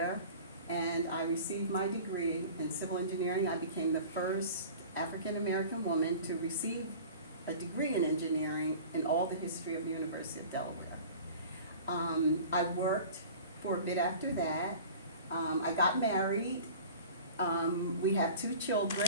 and I received my degree in civil engineering. I became the first African-American woman to receive a degree in engineering in all the history of the University of Delaware. I worked for a bit after that. I got married. We have 2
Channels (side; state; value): both; inverted; correlation -0.41